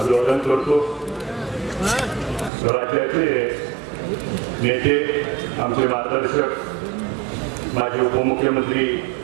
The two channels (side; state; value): left; drops out; at 2.5 s